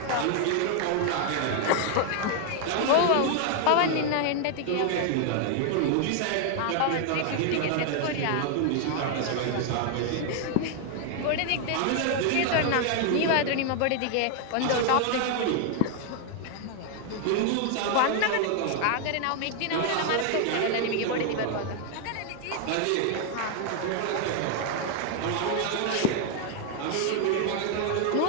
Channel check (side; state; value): both; different; correlation 0.00